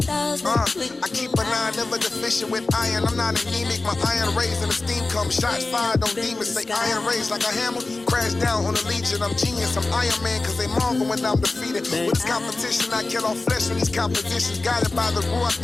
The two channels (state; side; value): quieter; right; 3.3 dB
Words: I keep an eye, never deficient with iron. I'm not anemic, my iron raised and the steam comes. Shots fired on demons, say iron raised like a hammer. Crash down on the legion, I'm genius, I'm Iron Man, cause they marvel when I'm defeated. With this competition, I kill off flesh when these competitions. Guided by the Ruach,